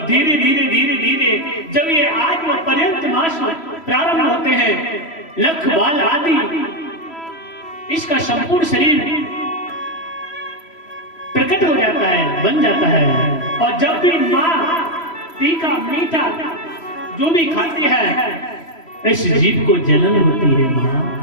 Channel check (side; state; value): right; late; 3.0 ms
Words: धीरे धीरे धीरे धीरे जब ये आत्म पर्यंत मास प्रारंभ होते हैं, लख बाल आदि इसका संपूर्ण शरीर प्रकट हो जाता है, बन जाता है। और जब भी मां तीखा मीठा जो भी खाती है, इस जीव को जलन होती है। मां